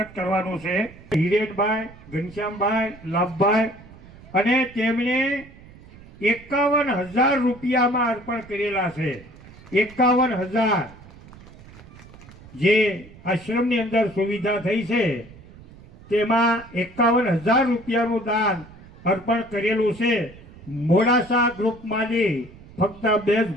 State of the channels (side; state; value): right; noise; rumble, 20 dB below the sound